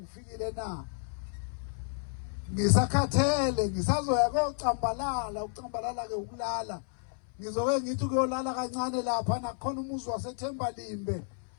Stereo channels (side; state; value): right; silent; 57 dB below the other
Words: na ngisakhathele ngisazoya koCambalala uCambalala ke ukulala ngizoke ngithi kuyolala kancane lapha nakhona umuzi waseThembalimbe